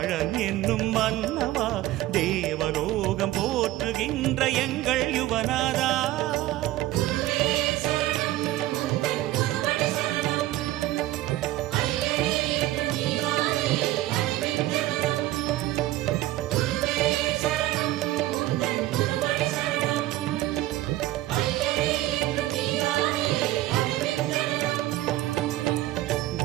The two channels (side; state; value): left; quieter; 15.8 dB